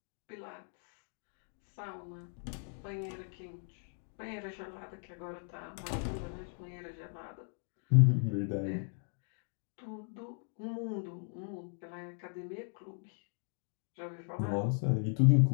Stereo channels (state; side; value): silent; right; 53 dB below the other